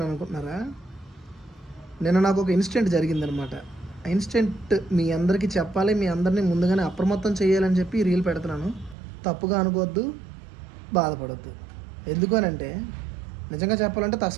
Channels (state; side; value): drops out; left; at 9.0 s